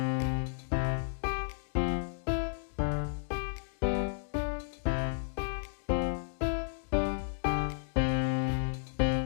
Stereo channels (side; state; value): right; silent; digital silence